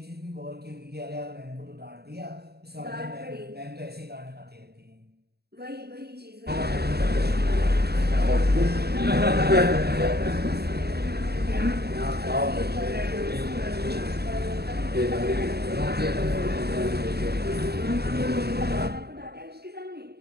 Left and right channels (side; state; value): left; late; 0.47 ms